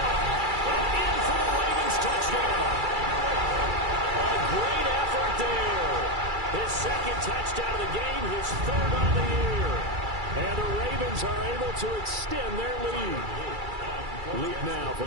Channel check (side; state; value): left; late; 2.3 ms